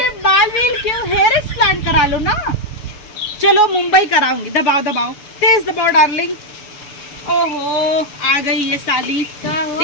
बाल व्हील क्यों, हेयर ट्रांसप्लांट करा लो ना। चलो मुंबई कराऊंगी। दबाओ दबाओ, तेज दबाओ डार्लिंग। ओहो आ गई ये साली,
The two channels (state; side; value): late; right; 6.9 ms